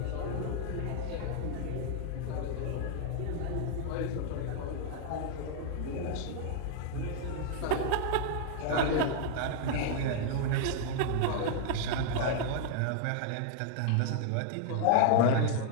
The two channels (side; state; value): both; different; correlation 0.00